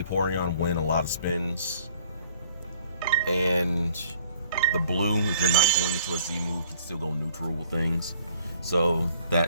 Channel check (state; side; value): inverted; both; correlation -0.58